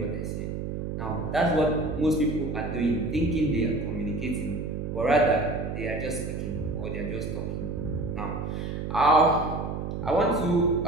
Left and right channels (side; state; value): right; noise; hum, 4 dB below the sound